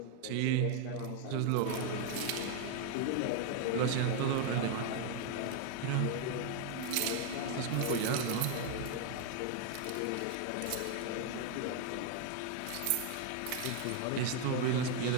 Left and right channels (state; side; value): different; both; correlation 0.01